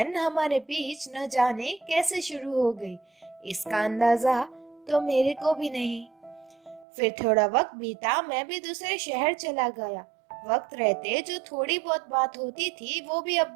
हमारे बीच न जाने कैसे शुरू हो गई, इसका अंदाजा तो मेरे को भी नहीं। फिर थोड़ा वक्त बीता, मैं भी दूसरे शहर चला गया। वक्त रहते जो थोड़ी बहुत बात होती थी वो भी अब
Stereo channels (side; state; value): left; drops out; at 6.9 s